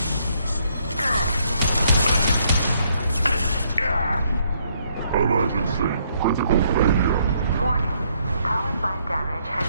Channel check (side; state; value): both; inverted; correlation -0.71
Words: Emergency. Critical failure. Warning. Power plant damage has